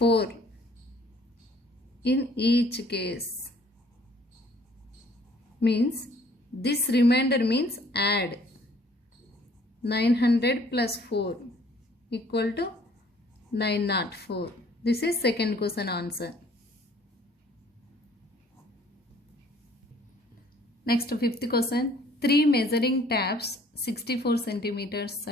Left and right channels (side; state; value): both; normal; correlation 0.58